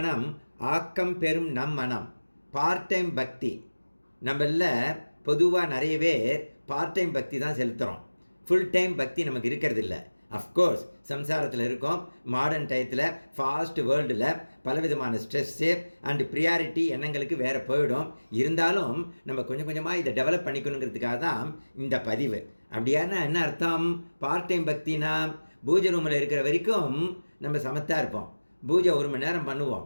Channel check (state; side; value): inverted; both; correlation -1.00